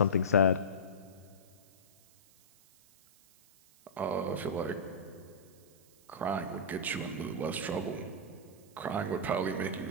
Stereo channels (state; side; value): noise; right; hiss, 27 dB below the sound